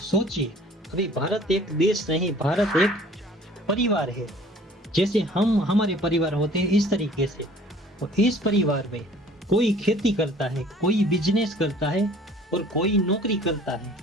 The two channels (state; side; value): normal; both; correlation 0.52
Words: अभी भारत एक देश नहीं, भारत एक परिवार है। जैसे हम हमारे परिवार होते हैं इस तरीके से, और इस परिवार में कोई खेती करता है, कोई बिजनेस करता है और कोई नौकरी करता है।